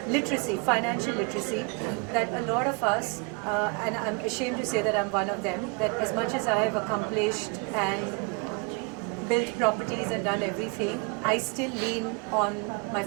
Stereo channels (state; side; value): quieter; left; 33.0 dB